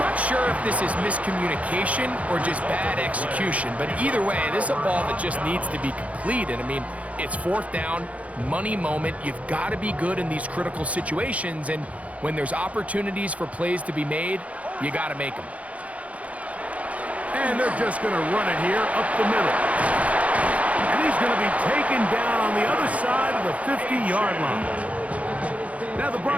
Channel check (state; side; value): late; left; 0.066 ms